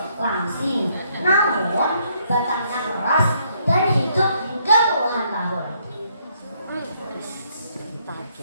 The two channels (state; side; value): inverted; both; correlation -0.71